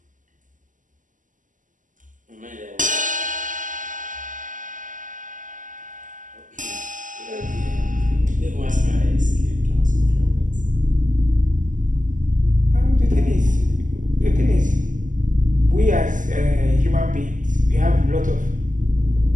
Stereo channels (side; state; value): left; late; 0.38 ms